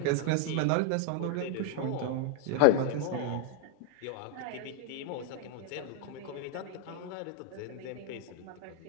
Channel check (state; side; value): different; both; correlation 0.00